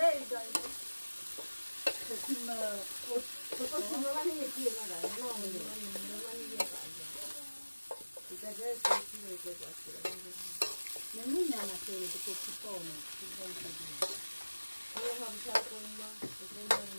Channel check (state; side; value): inverted; both; correlation -1.00